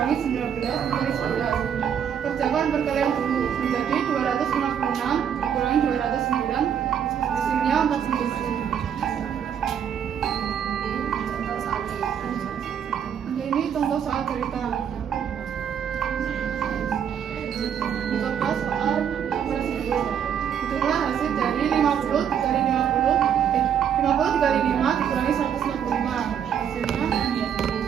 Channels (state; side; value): quieter; left; 8.4 dB